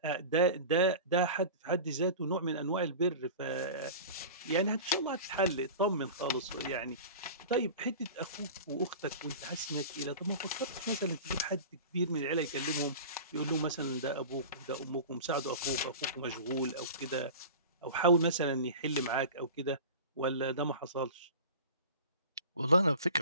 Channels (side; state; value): both; inverted; correlation -0.34